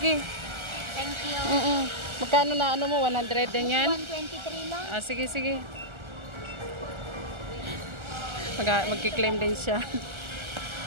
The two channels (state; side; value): late; left; 1.4 ms